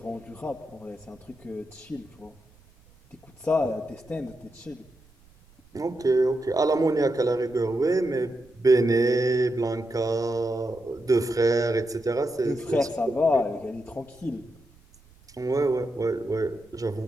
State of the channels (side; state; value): right; noise; rumble, 28 dB below the sound